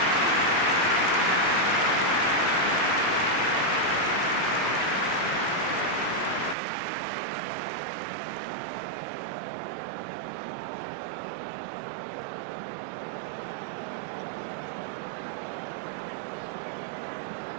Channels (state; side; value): drops out; left; at 6.6 s